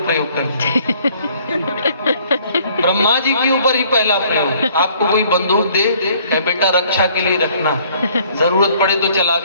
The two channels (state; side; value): inverted; both; correlation -0.59